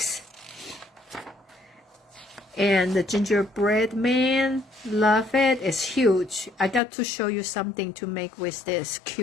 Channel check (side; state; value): right; drops out; at 6.8 s